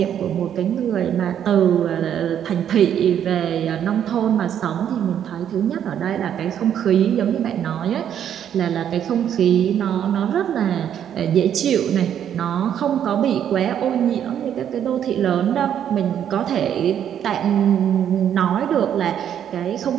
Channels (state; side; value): quieter; left; 9.5 dB